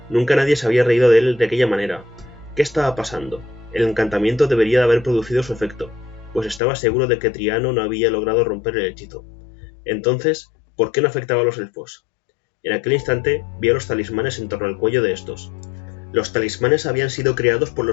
Nunca nadie se había reído de él de aquella manera. ¿Qué estaba pasando? El encantamiento debería de haber producido su efecto, pues estaba seguro de que Triano no había logrado romper el hechizo. Entonces, ¿por qué no afectaba a los elfos? En aquel instante, vio los talismanes en torno al cuello de estos. Los talismanes habían sido creados por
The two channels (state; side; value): drops out; right; at 6.6 s